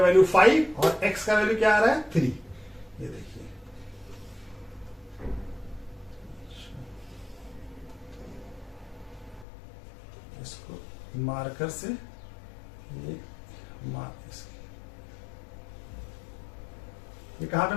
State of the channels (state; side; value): drops out; right; at 9.5 s